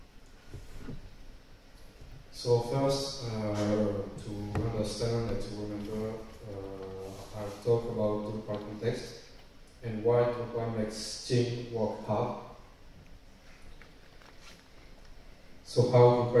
So first, to understand and to remember, I'll talk about Drupal context and why Drupal makes team work hard. So how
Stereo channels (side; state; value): both; identical; correlation 1.00